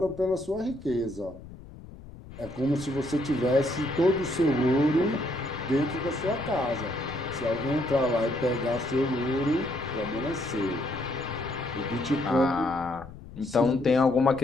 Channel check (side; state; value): left; noise; rumble, 17 dB below the sound